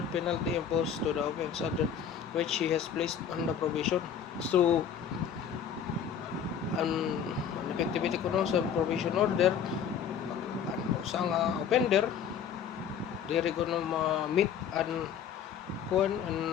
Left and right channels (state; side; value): quieter; right; 7.8 dB